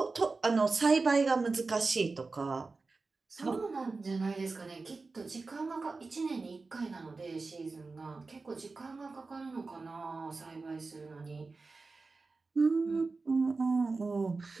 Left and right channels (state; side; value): quieter; left; 3.9 dB